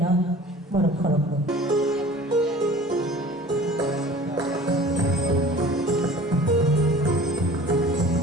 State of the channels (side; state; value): both; normal; correlation 0.45